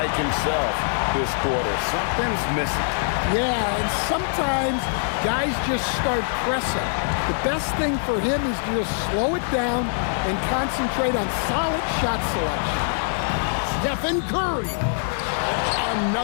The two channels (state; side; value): silent; right; digital silence